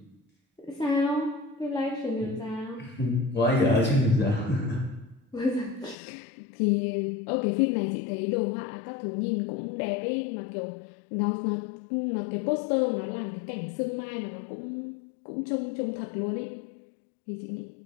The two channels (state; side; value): drops out; right; at 6.0 s